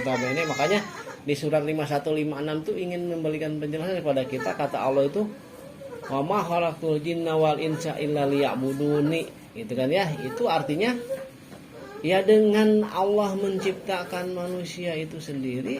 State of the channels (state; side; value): identical; both; correlation 1.00